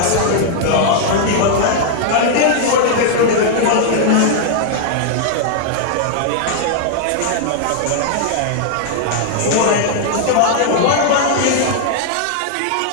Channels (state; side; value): different; both; correlation -0.01